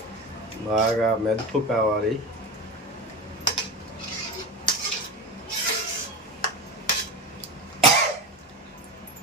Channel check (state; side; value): normal; both; correlation 0.23